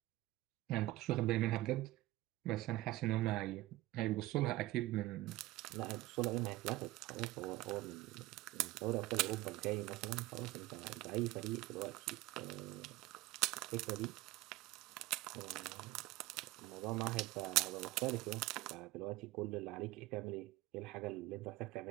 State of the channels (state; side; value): quieter; left; 17.7 dB